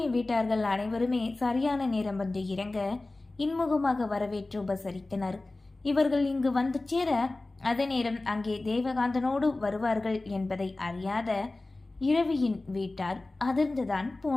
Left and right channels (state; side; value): quieter; right; 3.0 dB